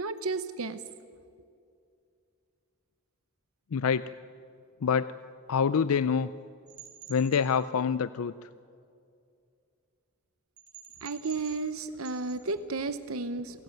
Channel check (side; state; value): right; quieter; 3.8 dB